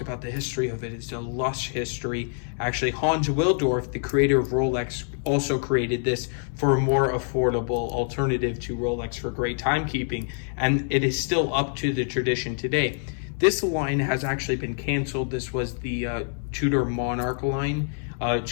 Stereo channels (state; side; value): silent; right; 61 dB below the other